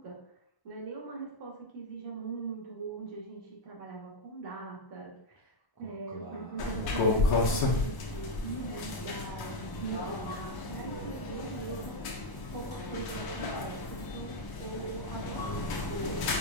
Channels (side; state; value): right; late; 1.0 ms